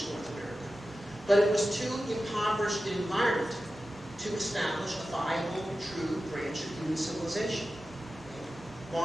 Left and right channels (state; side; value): normal; both; correlation 0.93